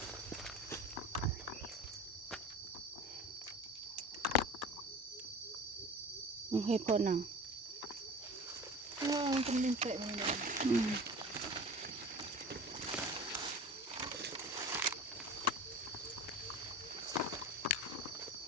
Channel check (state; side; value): normal; both; correlation 0.37